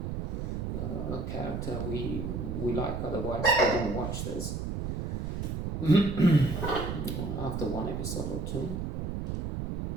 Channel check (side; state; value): right; noise; rumble, 2 dB below the sound